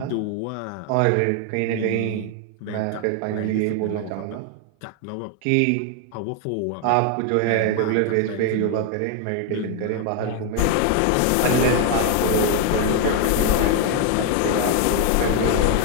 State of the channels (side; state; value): both; different; correlation 0.00